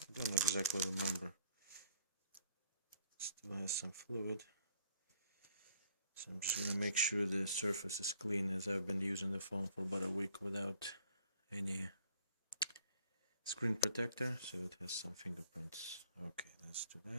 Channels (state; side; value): inverted; both; correlation -0.59